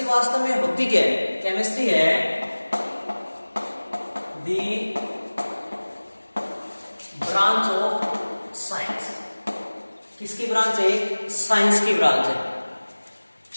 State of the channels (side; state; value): both; inverted; correlation -1.00